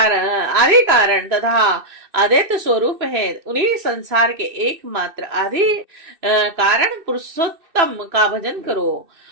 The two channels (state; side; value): late; left; 2.6 ms